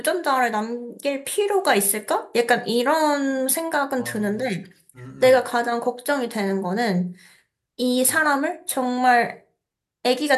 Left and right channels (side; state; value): both; identical; correlation 1.00